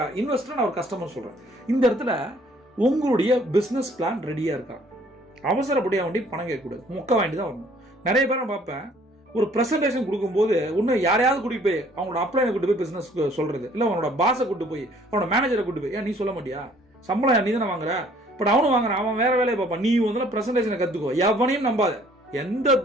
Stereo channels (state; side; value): normal; both; correlation 0.59